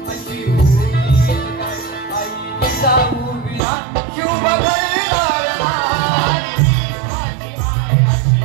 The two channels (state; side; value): drops out; left; at 3.6 s